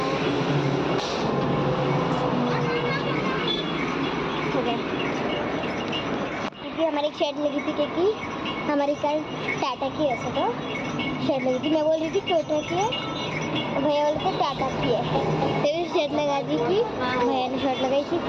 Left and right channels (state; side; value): identical; both; correlation 1.00